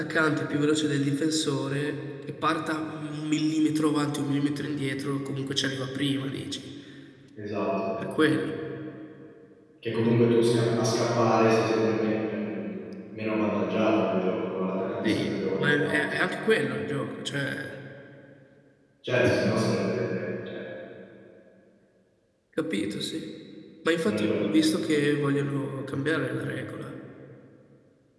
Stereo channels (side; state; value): both; identical; correlation 1.00